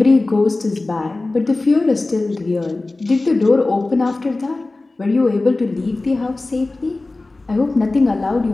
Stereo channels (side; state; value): right; quieter; 3.1 dB